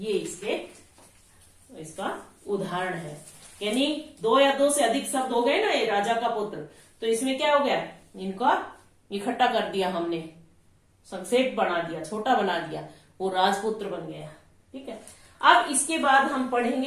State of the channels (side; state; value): both; identical; correlation 1.00